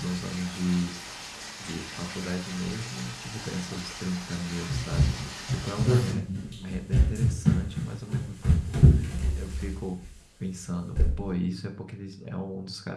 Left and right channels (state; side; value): identical; both; correlation 1.00